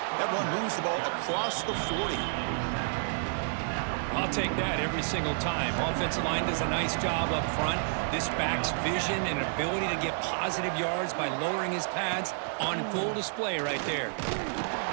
That run moves the ball across the 40. I'll take that every single time. Offensive line does a nice job up front. This back's vision and ability to get positive yards by lowering his pads on full display right there.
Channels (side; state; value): left; silent; digital silence